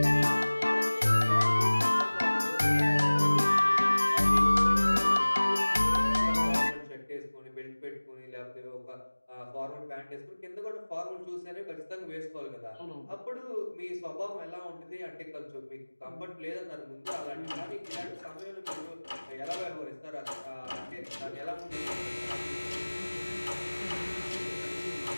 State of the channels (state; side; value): inverted; both; correlation -1.00